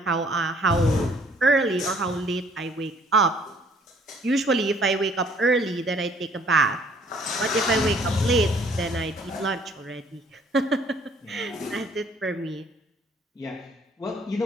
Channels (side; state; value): both; normal; correlation 0.60